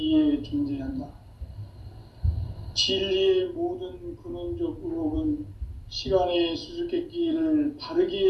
존재한다. 진리의 모든 근원적 의혹은 시간의 수수께끼를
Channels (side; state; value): both; identical; correlation 1.00